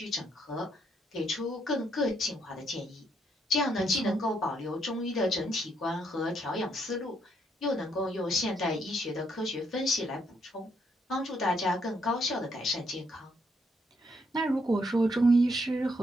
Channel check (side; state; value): both; normal; correlation 0.74